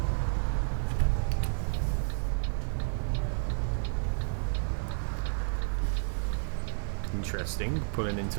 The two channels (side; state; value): left; silent; digital silence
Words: Interesting, pulling into